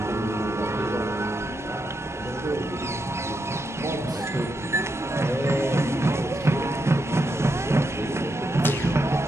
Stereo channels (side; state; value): both; normal; correlation 0.83